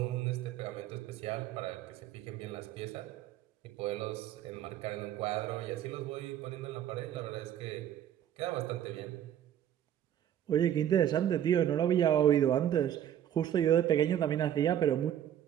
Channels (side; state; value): left; quieter; 10.6 dB